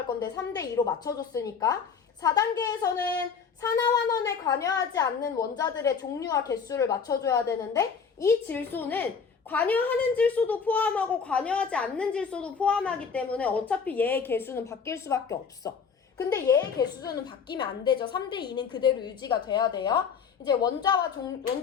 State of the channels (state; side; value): quieter; right; 6.1 dB